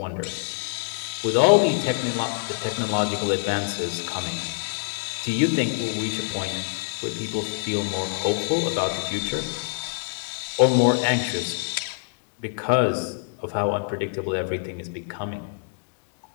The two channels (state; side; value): silent; right; digital silence